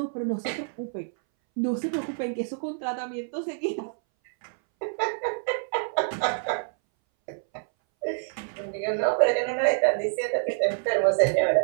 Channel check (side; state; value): left; silent; 60 dB below the other